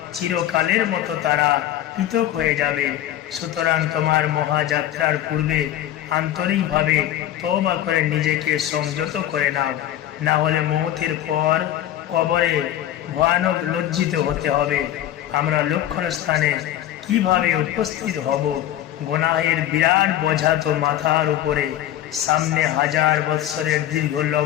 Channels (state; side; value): quieter; right; 12.4 dB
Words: চিরকালের মতো তারা পৃথক হয়ে যাবে। সুতরাং তোমার মহাযাত্রার পূর্বে আন্তরিকভাবে তওবা করে নিজেকে সংযত করে নাও, না হলে মওতের পর কবরে ভয়ানক লজ্জিত হতে হবে। আমরা লক্ষণ স্থানে কিভাবে উপস্থিত হব? গুনাহের বিরাট বোঝা তো মাথার উপরে, সামনে 1000 বৎসরের দীর্ঘ